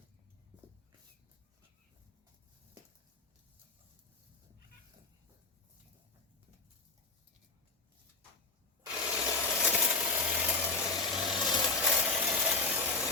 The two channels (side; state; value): right; quieter; 3.6 dB